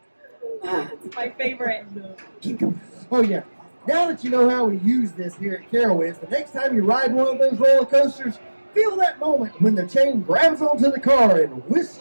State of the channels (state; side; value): inverted; both; correlation -1.00